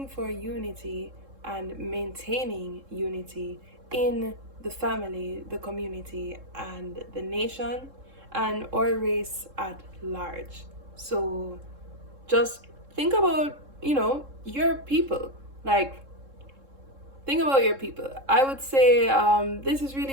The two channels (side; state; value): left; late; 3.7 ms